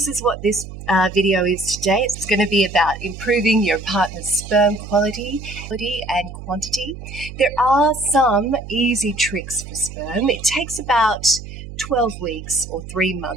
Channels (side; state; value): right; noise; hum, 12 dB below the sound